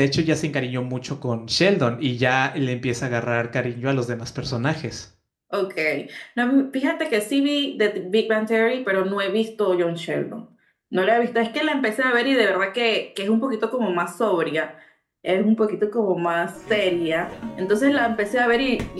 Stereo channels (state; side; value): identical; both; correlation 1.00